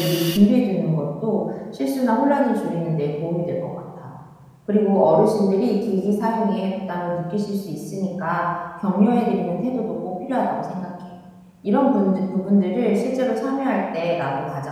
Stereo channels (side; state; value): both; identical; correlation 1.00